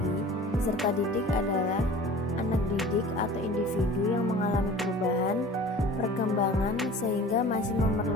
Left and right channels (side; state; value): both; normal; correlation 0.43